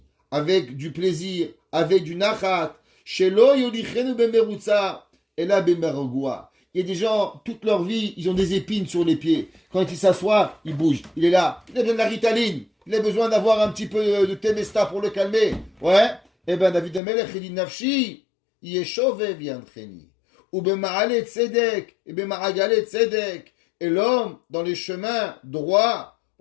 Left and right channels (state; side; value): drops out; right; at 17.0 s